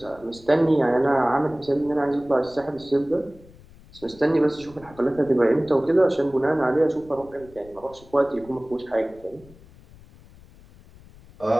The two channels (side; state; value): left; noise; rumble, 23 dB below the sound